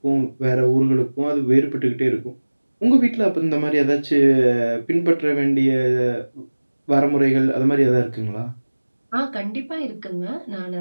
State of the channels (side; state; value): both; inverted; correlation -1.00